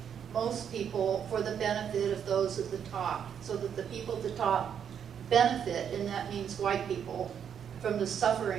most people for the benefit of those at the top, so that the people at the top benefit, and that means white people, from the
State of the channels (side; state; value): left; quieter; 8.2 dB